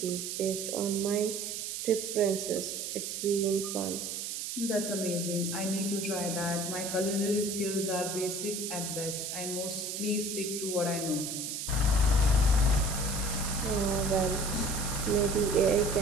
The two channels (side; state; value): right; noise; hiss, 4 dB below the sound